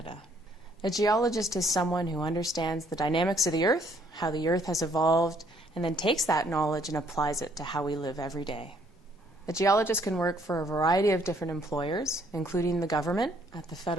A geologist is someone who understands the dynamics of the Earth, how the Earth has evolved, and then takes that knowledge and applies it to how we live every day. A geologist can work for a variety of different employers, including the government at the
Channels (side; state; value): both; normal; correlation 0.66